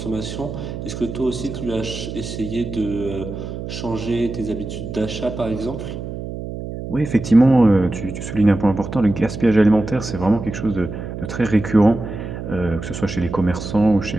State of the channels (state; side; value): noise; right; hum, 8 dB below the sound